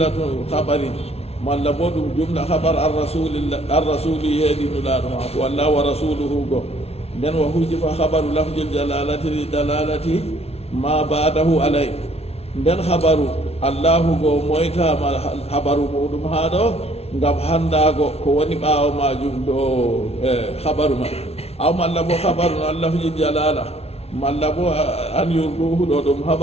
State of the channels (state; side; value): late; right; 0.30 ms